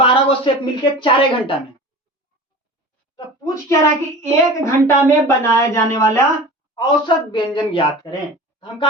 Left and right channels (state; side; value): normal; both; correlation 0.37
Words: को शेफ मिलके 4 घंटा में। तो पूछ क्या रहा कि 1 घंटा में बनाए जाने वाला औसत व्यंजन ज्ञात करें। तो हम